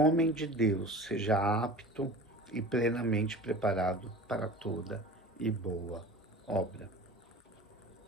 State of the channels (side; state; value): both; normal; correlation 0.37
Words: de Deus seja apto e plenamente preparado para toda e boa obra.